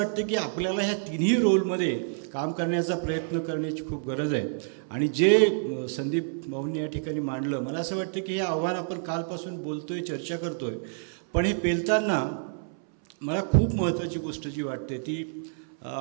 की आपल्याला ह्या तिन्ही रोलमध्ये काम करण्याचा प्रयत्न करण्याची खूप गरज आहे. आणि जे संदीप भाऊंनी या ठिकाणी मांडलं, मला असं वाटतं की हे आव्हान आपण कालपासून बोलतो आहे, चर्चा करतो आहे, पण हे पेलताना मला खूप महत्त्वाची गोष्ट जी वाटते ती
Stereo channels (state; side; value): silent; left; 59 dB below the other